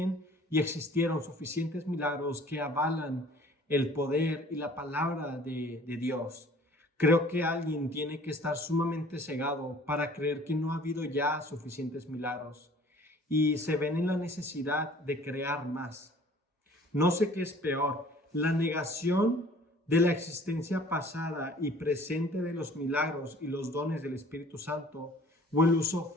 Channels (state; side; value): normal; both; correlation 0.51